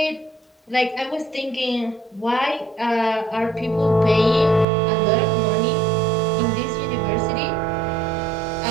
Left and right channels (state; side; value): drops out; left; at 4.7 s